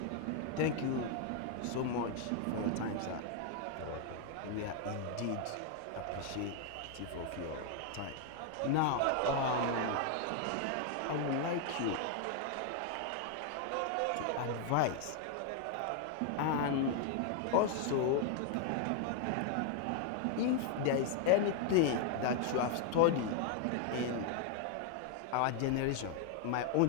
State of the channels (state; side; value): different; both; correlation 0.00